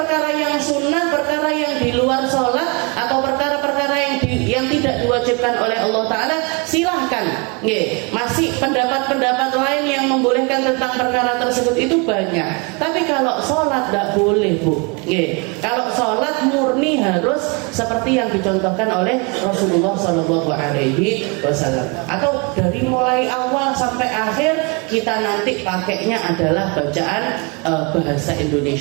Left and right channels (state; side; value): quieter; left; 30.7 dB